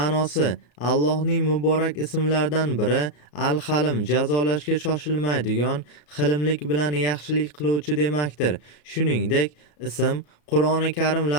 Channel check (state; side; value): late; right; 34 ms